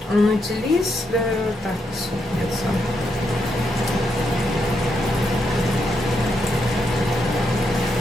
on utilise le soupe.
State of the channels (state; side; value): normal; both; correlation 0.80